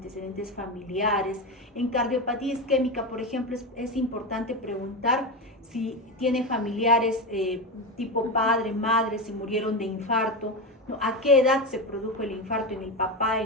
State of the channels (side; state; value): both; normal; correlation 0.17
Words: familiares. En cardiopatía isquémica, por ejemplo, es importante preguntar si tiene familiares tipo padre, madre, si murieron de infarto, ¿no? A qué edad se produjo el infarto en el papá,